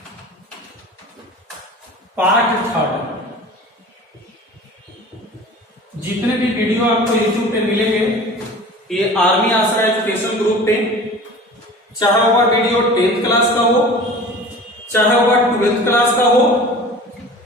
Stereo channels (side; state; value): both; normal; correlation 0.40